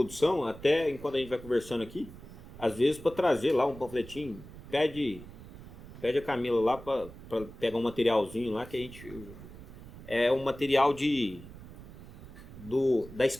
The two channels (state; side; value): noise; right; rumble, 16 dB below the sound